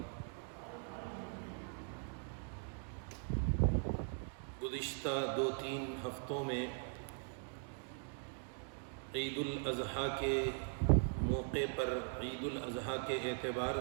گزشتہ 2-3 ہفتوں میں عید الاضحیٰ کے موقع پر، عید الاضحیٰ کے اعتبار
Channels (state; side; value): silent; left; 51 dB below the other